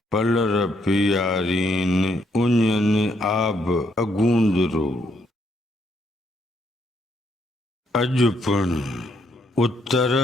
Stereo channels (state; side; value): normal; both; correlation 0.73